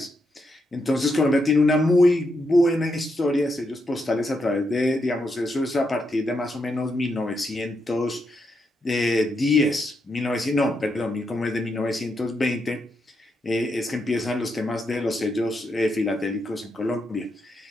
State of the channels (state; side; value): normal; both; correlation 0.82